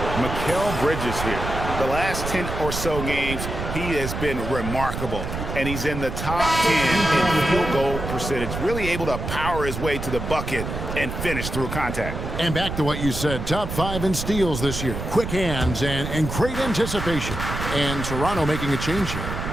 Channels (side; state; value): right; noise; rumble, 5 dB below the sound